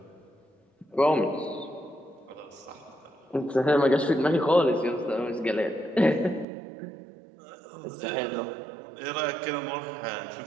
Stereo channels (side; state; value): left; drops out; at 6.5 s